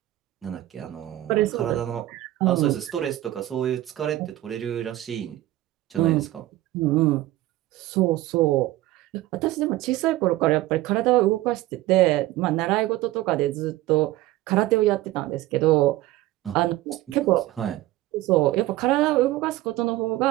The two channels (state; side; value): quieter; left; 16.1 dB